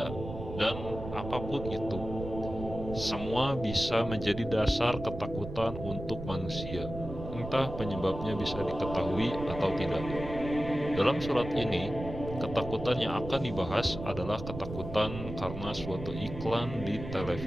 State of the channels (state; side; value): noise; right; rumble, 9 dB below the sound